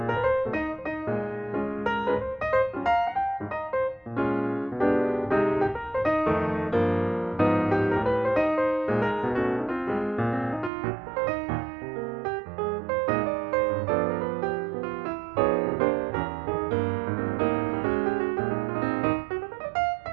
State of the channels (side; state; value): left; drops out; at 10.7 s